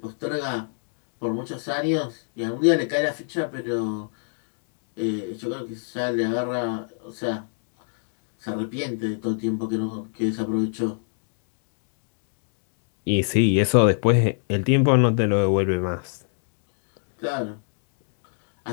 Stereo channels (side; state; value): right; silent; digital silence